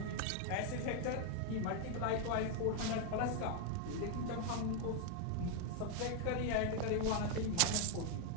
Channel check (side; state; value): both; different; correlation 0.01